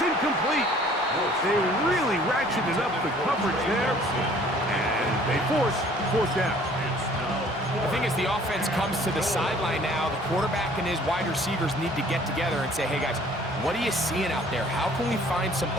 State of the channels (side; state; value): both; normal; correlation 0.55